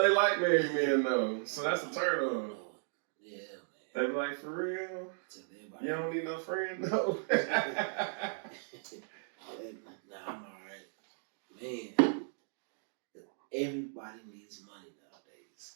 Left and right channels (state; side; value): silent; left; digital silence